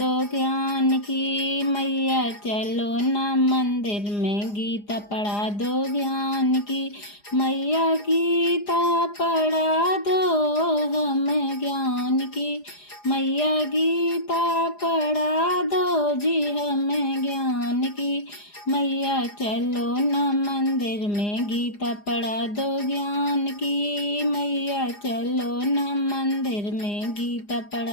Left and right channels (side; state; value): right; late; 4.9 ms